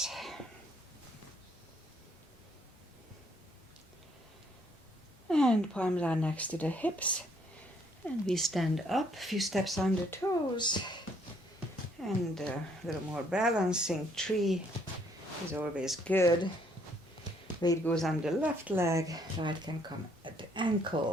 And palms are next to the hips. And we stand up, a few steps on the toes. And a little more balancing. Tree is always good. Weight goes on the left leg, right can come at the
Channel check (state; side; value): normal; both; correlation 0.67